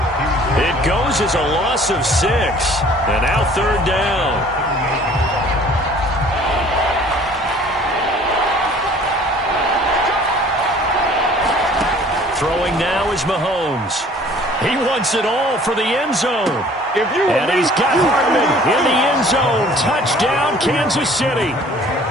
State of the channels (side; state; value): both; normal; correlation 0.52